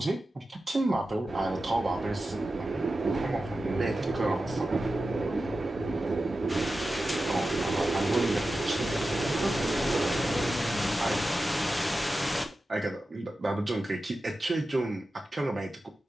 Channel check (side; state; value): both; normal; correlation 0.93